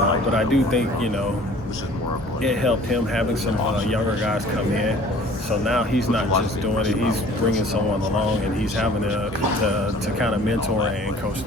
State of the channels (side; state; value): both; normal; correlation 0.50